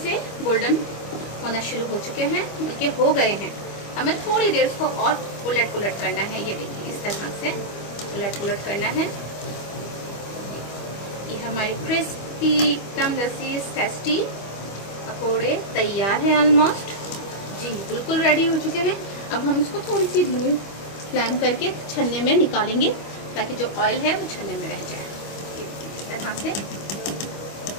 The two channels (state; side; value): late; right; 25 ms